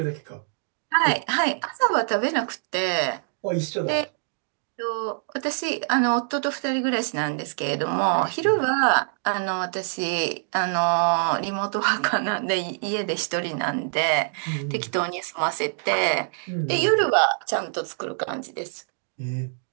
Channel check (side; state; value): left; silent; digital silence